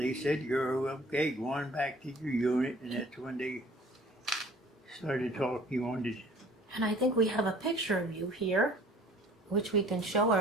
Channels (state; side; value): normal; both; correlation 0.52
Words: said, "You're okay, go on back to your unit," and that's when they started talking on this. And I think we have a picture of you here, which we can show